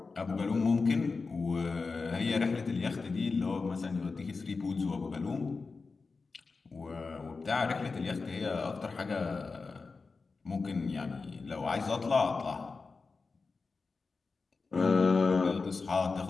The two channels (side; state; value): right; quieter; 4.3 dB